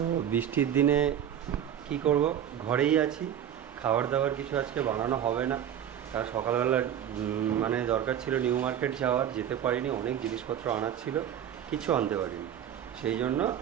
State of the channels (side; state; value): left; quieter; 9.9 dB